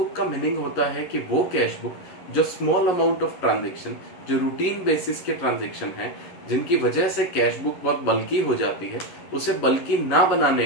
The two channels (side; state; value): right; late; 11 ms